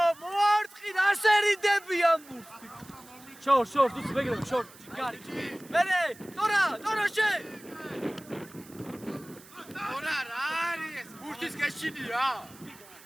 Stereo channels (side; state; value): right; noise; hiss, 22 dB below the sound